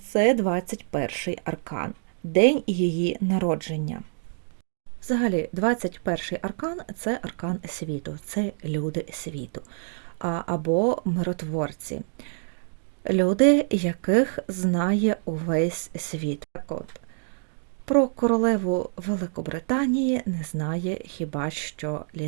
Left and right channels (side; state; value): left; silent; digital silence